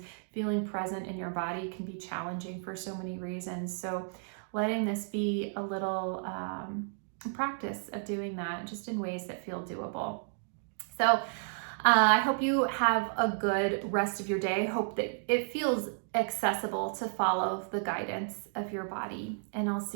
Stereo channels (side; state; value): left; silent; digital silence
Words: Feeling present in your body can be challenging for so many reasons. So letting this be a little practice of doing that just in ways that feel doable. So I hope you have a good rest of your day. I hope that it feels accessible to follow the guidance of your body. And I'll